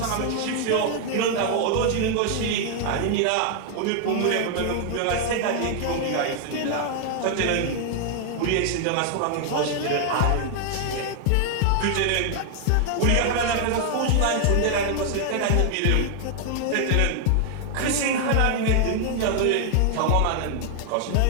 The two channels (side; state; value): both; different; correlation 0.00